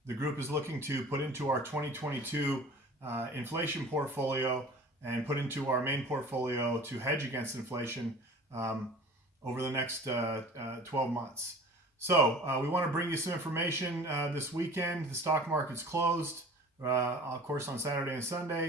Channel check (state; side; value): normal; both; correlation 0.43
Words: group is looking to put into our 2022 inflation portfolio and put into our main portfolio to hedge against inflation over the next 12 months. So we want to bring you some information this weekend. The stock market's closed, of course, on Saturday and